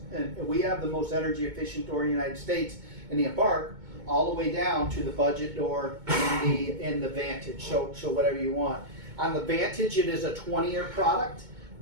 and we have the most energy efficient door in the United States in the Embark, all the way down to the budget door in the Vantage. So whatever you want. On the Vantage, it is a 20-year product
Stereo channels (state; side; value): late; left; 2.2 ms